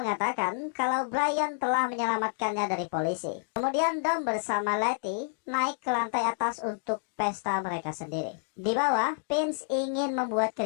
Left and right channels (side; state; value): right; silent; digital silence